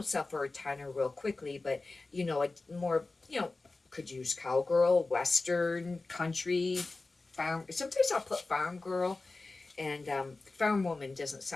sell for a ton or real quickly, but, a more, could use cowgirl, western, country, farm. Sometimes I'll put farm girl, and farm woman doesn't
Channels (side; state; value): right; quieter; 3.4 dB